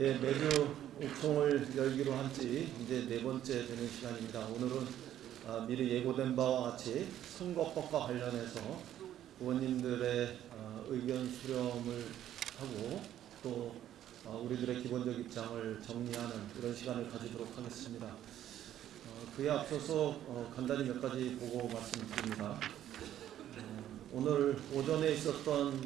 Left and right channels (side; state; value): left; quieter; 11.6 dB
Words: 매주 옥송을 열기로 한 지 이제 네 번째 되는 시간입니다. 오늘은 미리 예고된 바와 같이 선거법과 관련해서 의원님들의 의견 수렴을 하고 또 우리들의 기본적 입장을 정리하는 이런 시간을 가지도록 하겠습니다. 그에 앞서서 간단히 몇 가지 보고 말씀드립니다. 오늘 오전에